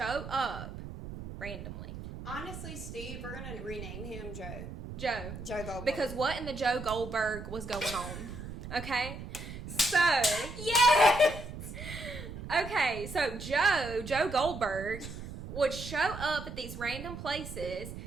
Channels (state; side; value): noise; right; rumble, 10 dB below the sound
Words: up randomly. Honestly, Steve, we're going to rename him Joe. Joe Goldberg. Because what in the Joe Goldberg was going on? Okay? So. Yes! Okay, so Joe Goldberg would show up at these random places,